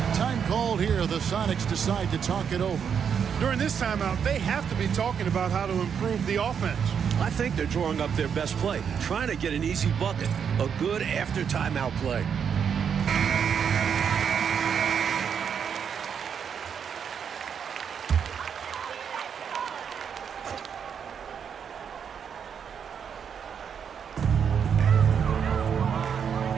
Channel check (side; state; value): left; quieter; 7.4 dB